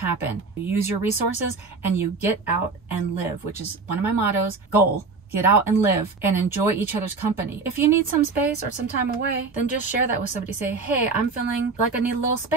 You use your resources and you get out and live, which is one of my mottos, goal. Get out and live and enjoy each other's company. If you need some space or some time away, then just share that with somebody. Say, hey, I'm feeling like I need a little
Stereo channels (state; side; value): quieter; left; 4.3 dB